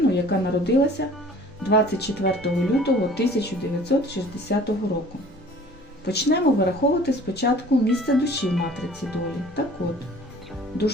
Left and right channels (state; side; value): normal; both; correlation 0.49